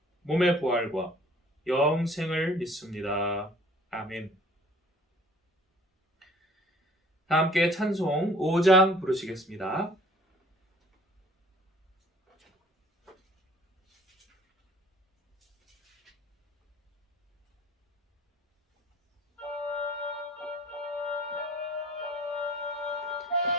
몸의 부활과 영생을 믿습니다. 아멘. 다 함께 찬송 5장 부르시겠습니다.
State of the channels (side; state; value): both; normal; correlation 0.52